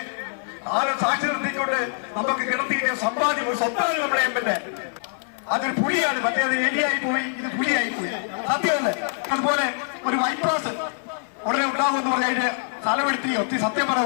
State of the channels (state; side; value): silent; right; 59 dB below the other